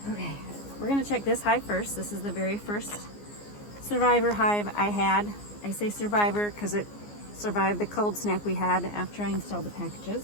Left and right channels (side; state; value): right; late; 14 ms